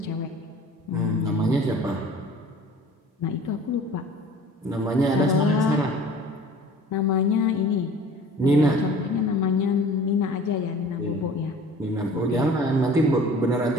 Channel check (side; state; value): both; normal; correlation 0.46